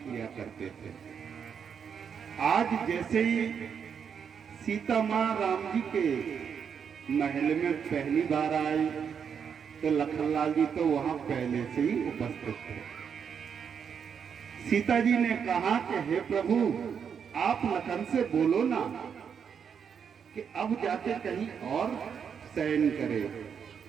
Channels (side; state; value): left; quieter; 7.2 dB